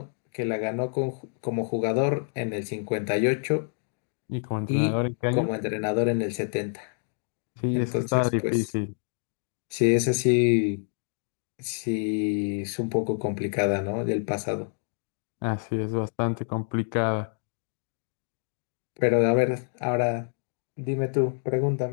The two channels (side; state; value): right; silent; 60 dB below the other